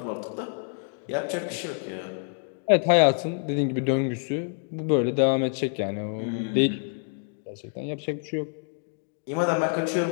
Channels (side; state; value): right; silent; 60 dB below the other